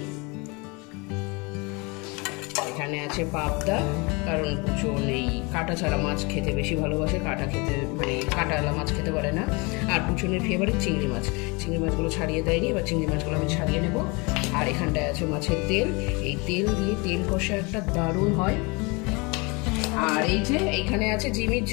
এখানে আছে পাবদা, কারণ পুজো নেই, কাটা ছাড়া মাছ খেতে বেশি ভালোবাসে, কাটা খেতে মানে কাটাওয়ালা মাছ খেতে পারে না। আর পুজোনের ফেভারিট চিংড়ি মাছ, চিংড়ি মাছগুলো ছাড়িয়ে দেয়নি, এবার চিংড়ি মাছগুলো আমি ছাড়িয়ে নেব। আর এখানটায় আছে মাছের তেল, এই তেল দিয়ে তেল কষা একটা দারুণ হয়। আর এই যে এইখানে আছে জিমির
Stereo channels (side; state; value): right; quieter; 28.1 dB